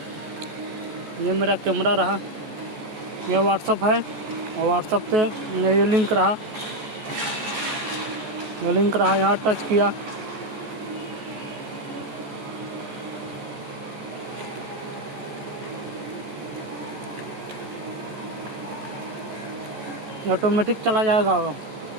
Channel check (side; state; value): left; late; 14 ms